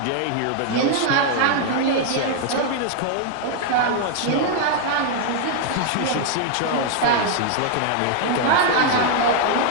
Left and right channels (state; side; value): different; both; correlation 0.00